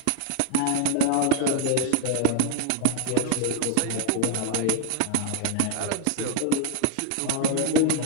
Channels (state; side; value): different; both; correlation 0.00